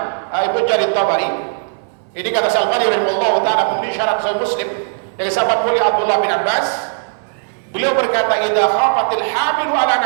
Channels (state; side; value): silent; left; digital silence